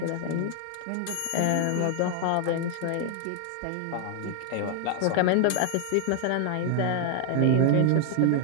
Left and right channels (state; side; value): different; both; correlation 0.00